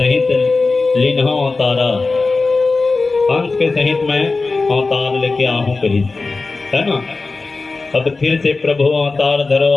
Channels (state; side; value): quieter; right; 3.8 dB